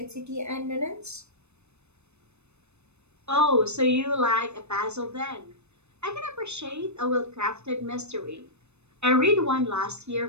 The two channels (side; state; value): left; late; 0.81 ms